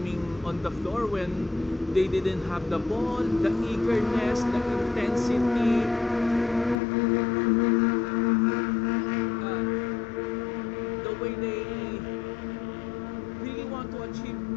on the floor when they didn't have the ball. The eagerness, the intensity, the way they really want to achieve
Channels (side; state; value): right; drops out; at 6.8 s